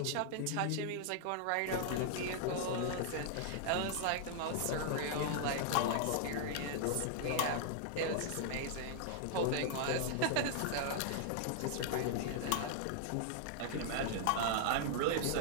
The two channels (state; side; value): different; both; correlation -0.01